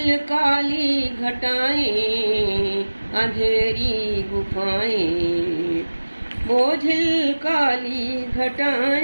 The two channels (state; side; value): inverted; both; correlation -1.00